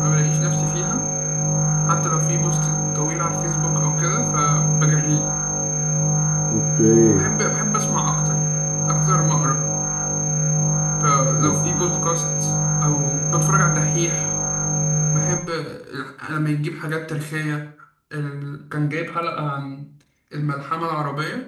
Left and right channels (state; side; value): identical; both; correlation 1.00